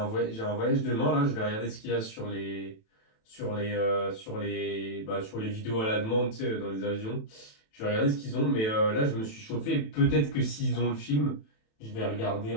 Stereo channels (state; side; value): late; right; 27 ms